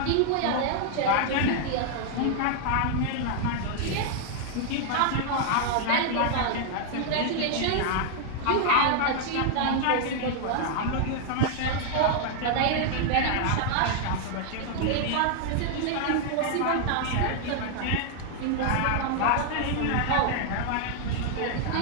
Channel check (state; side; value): different; both; correlation 0.00